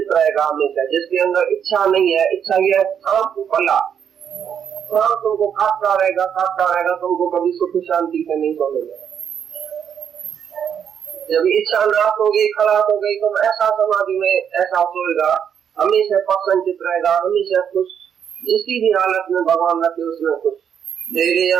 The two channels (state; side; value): quieter; left; 8.2 dB